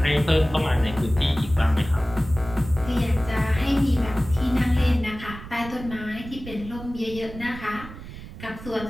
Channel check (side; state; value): right; noise; rumble, 13 dB below the sound